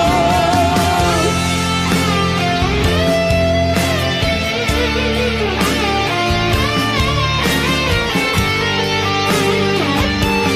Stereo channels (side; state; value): both; identical; correlation 1.00